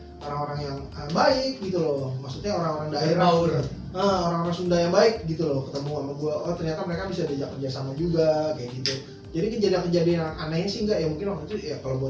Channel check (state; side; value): identical; both; correlation 1.00